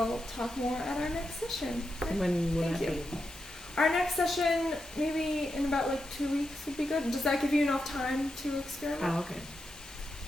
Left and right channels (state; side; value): normal; both; correlation 0.86